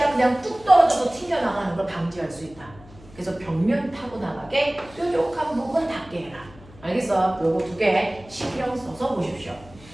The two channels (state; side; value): noise; left; hum, 22 dB below the sound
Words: 그냥 뚝 떨어져서 튕겨나가는 걸 방지할 수 있다. 그래서 벽면 타고 나가게 뾰족한 부분 닿게 해라. 알겠어? 요거 두 개 신경 써서 보십시오.